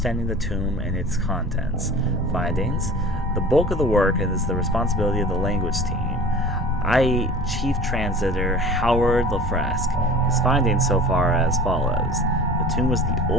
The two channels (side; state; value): both; normal; correlation 0.42